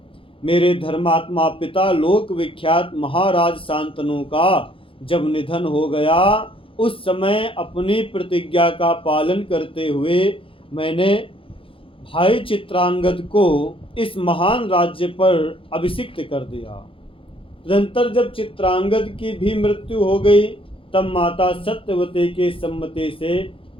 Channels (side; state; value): right; late; 0.26 ms